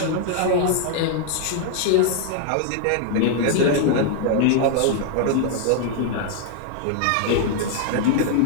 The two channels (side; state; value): both; different; correlation 0.00